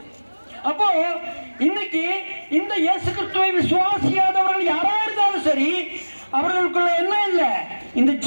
அப்போ இன்னைக்கு இந்த இயேசு கிறிஸ்துவை விசுவாசியாதவர்கள் யாரா இருந்தாலும் சரி, அவர்களுக்குள்ள என்ன இல்லை? இந்த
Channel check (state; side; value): inverted; both; correlation -1.00